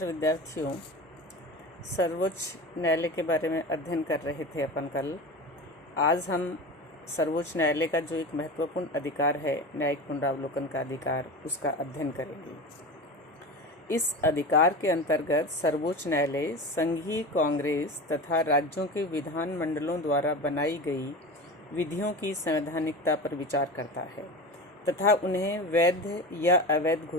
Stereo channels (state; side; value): normal; both; correlation 0.29